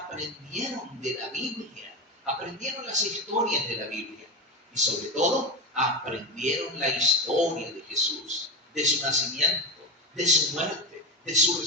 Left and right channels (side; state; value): both; normal; correlation 0.18